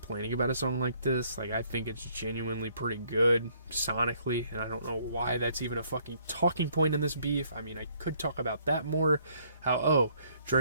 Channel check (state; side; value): inverted; both; correlation -0.64